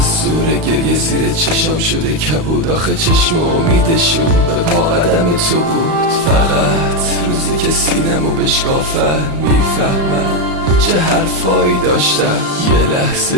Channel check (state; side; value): late; left; 35 ms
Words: زور گریه زیر چشام شده کبود. آخه چشم امیدشون به پا قدم تو بود. فقط روزی که سینمو بشکافن میفهمن چه حرفایی داشتم.